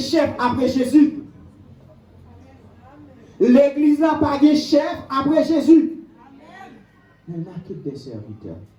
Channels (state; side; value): identical; both; correlation 1.00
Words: après Jésus. L'église n'a pas de chef après Jésus. Mais n'a que des serviteurs.